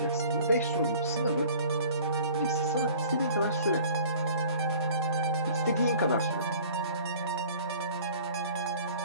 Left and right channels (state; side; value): inverted; both; correlation -0.48